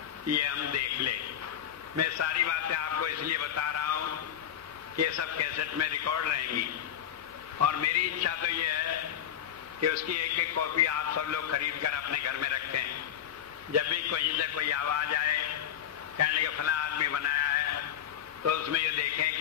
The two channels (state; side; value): quieter; right; 9.9 dB